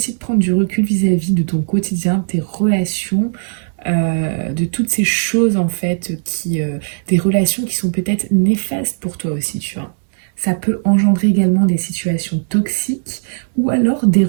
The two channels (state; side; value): silent; left; digital silence